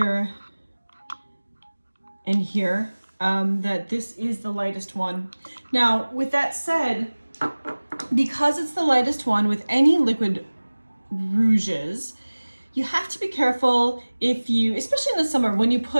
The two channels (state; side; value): inverted; both; correlation -1.00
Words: and here that this is the lightest one. Now, with that said, because it's the lightest one with any liquid rouges, you have to be careful if you, especially in the summer, when you